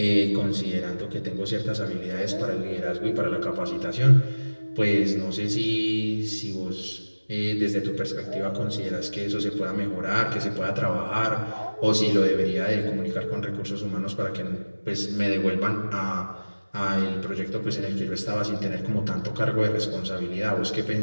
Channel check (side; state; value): both; inverted; correlation -1.00